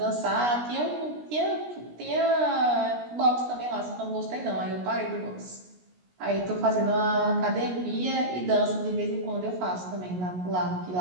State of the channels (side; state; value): left; late; 17 ms